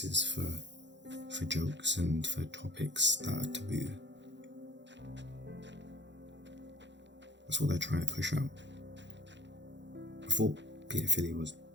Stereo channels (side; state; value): left; late; 0.52 ms